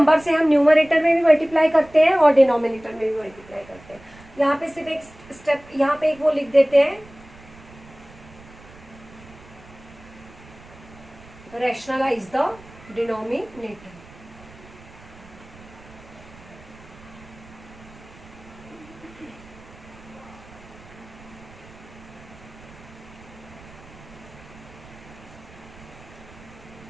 से हम न्यूमरेटर में भी मल्टीप्लाई करते हैं और डिनोमिनेटर में भी मल्टीप्लाई करते हैं। यहाँ पे सिर्फ एक स्टेप, यहाँ पे एक वो लिख देते हैं, रैशनलाइज द डिनोमिनेटर।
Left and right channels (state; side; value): noise; right; rumble, 21 dB below the sound